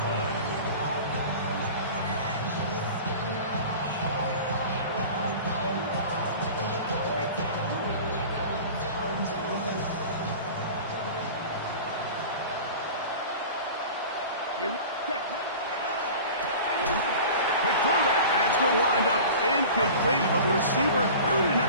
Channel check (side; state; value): both; inverted; correlation -0.38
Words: line. Quick throw that. That's going to wind up incomplete, but the receiver really didn't